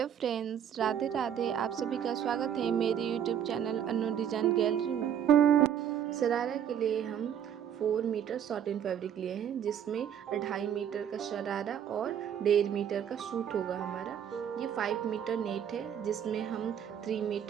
friends, Radhe Radhe. आप सभी का स्वागत है मेरे यूट्यूब चैनल अनु डिज़ाइन गैलरी में। शरारा के लिए हम 4 मीटर सॉटिन फैब्रिक लिए हैं, जिसमें 2.5 मीटर का शरारा और 1.5 मीटर का सूट होगा हमारा। ये 5 मीटर नेट है, जिसमें हम 3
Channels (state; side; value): quieter; left; 9.1 dB